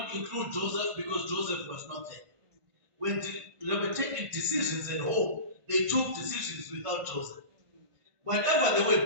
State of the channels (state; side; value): late; left; 1.5 ms